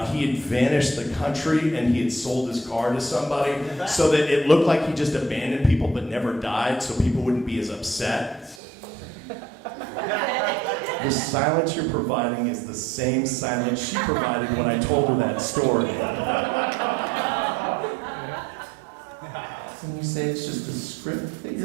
he had vanished the country and he had sold his car to somebody so that it looked like he just abandoned people but never died so people wouldn't be as upset. The silence you're providing is the same silence she provided when I told her that story. you say it's just a script that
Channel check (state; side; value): drops out; left; at 8.6 s